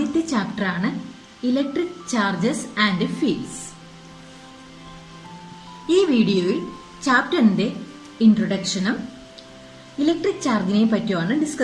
ചാപ്റ്ററാണ് ഇലക്ട്രിക് ചാർജസ് ആൻഡ് ഫീൽഡ്സ്. ഈ വീഡിയോയിൽ ചാപ്റ്ററിന്റെ ഇൻട്രൊഡക്ഷനും ഇലക്ട്രിക് ചാർജിനെ പറ്റിയാണ്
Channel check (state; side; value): identical; both; correlation 1.00